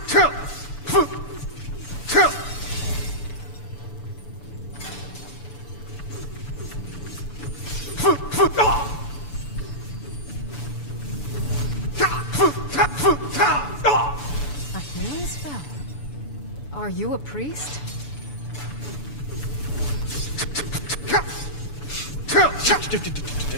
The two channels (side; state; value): right; late; 6.9 ms